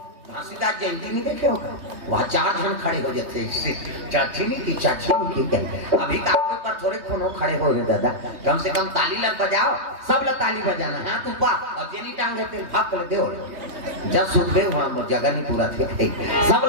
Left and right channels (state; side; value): late; left; 3.2 ms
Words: घासीदास जयंती नहीं देखे होगा वहाँ 4 जन खड़े हो जाते चाची नहीं की कहते अभी काफी पर थोड़े कोनो खड़े हो गए दादा कम से कम ताली लग बजाओ सब लोग ताली बजाना हाथ ऊपर और जेनी टांग देते भाग कर दो जब सुन गए वहाँ जगह नहीं पूरा थे सब